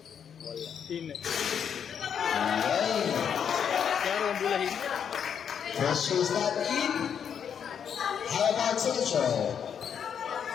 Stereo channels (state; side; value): quieter; right; 7.9 dB